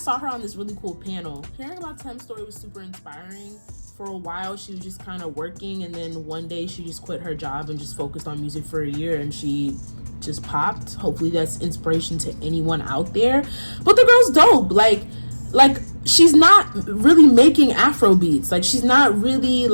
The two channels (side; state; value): both; inverted; correlation -1.00